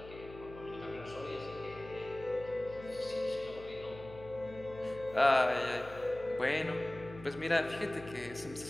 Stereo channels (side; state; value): left; noise; hum, 16 dB below the sound